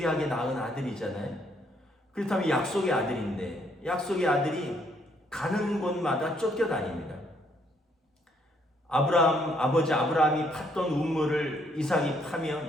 낳은 아들이잖아요. 그렇다면 약속의 아들인데 약속의 아들이 가는 곳마다 쫓겨다닙니다. 아버지 아브라함이 팠던 우물을 이삭이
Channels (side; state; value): both; normal; correlation 0.69